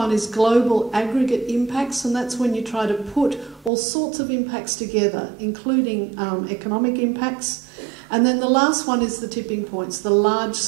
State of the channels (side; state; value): left; drops out; at 3.7 s